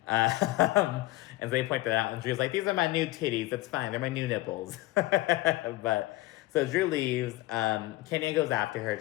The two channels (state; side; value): quieter; right; 18.3 dB